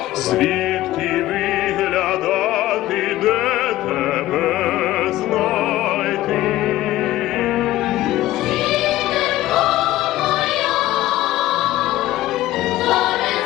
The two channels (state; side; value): quieter; right; 15.8 dB